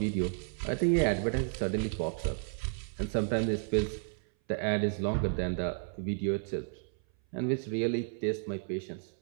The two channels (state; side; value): silent; left; 56 dB below the other